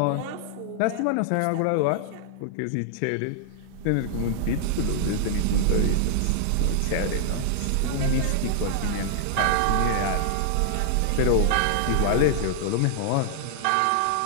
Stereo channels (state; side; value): different; both; correlation -0.01